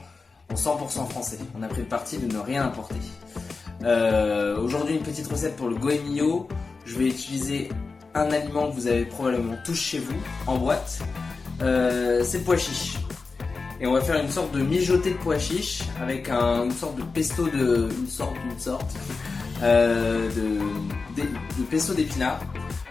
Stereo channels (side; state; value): right; quieter; 4.3 dB